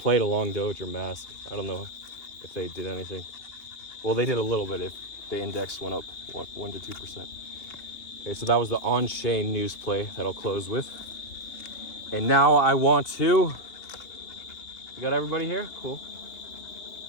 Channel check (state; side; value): late; right; 2.8 ms